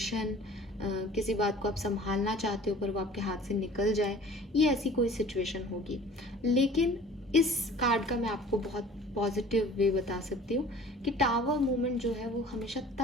किसी बात को आप संभालना चाहते हो पर वो आपके हाथ से निकल जाए, ये ऐसी कोई सिचुएशन होगी। लेकिन इस कार्ड का मैं आपको बहुत पॉजिटिव वे बता सकती हूँ कि टावर मूवमेंट जो है वो हमेशा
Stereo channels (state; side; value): normal; both; correlation 0.47